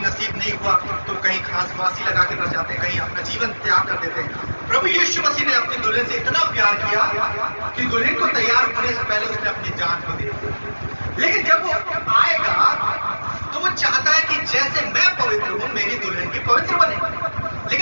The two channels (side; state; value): both; inverted; correlation -1.00